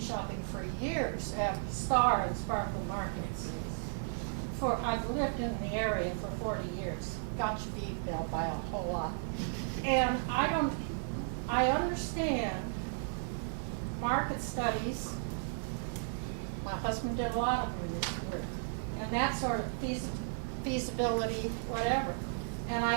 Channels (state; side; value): silent; left; digital silence